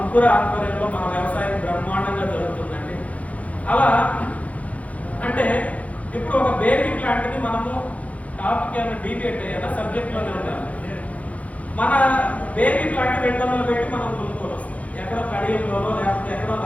ఆధ్వర్యంలో మన వ్యవసాయం బ్రహ్మాండంగా జరుగుతుందండి. అలా అంటే ఇప్పుడు ఒక బేబీ ప్లాంట్ ని మనము టాపిక్ ఏమైనా డీబేట్ అయ్యేలా సబ్జెక్ట్ లోనే ఉండాలి. మన బేబీ ప్లాంట్ 200 పెట్టి మనం కొనుక్కొని వస్తాం. ఎక్కడో కడియంలోనో లేకపోతే ఎక్కడో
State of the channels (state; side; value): late; right; 0.068 ms